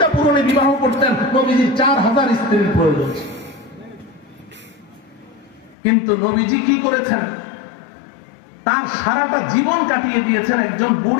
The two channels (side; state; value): right; drops out; at 5.8 s